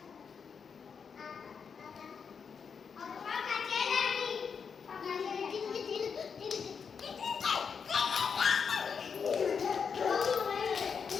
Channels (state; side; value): quieter; right; 6.3 dB